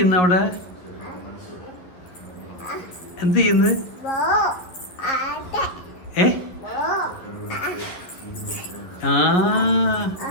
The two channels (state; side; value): late; right; 11 ms